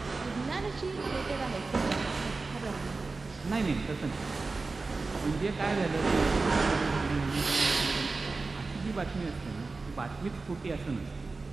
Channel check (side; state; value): left; quieter; 3.8 dB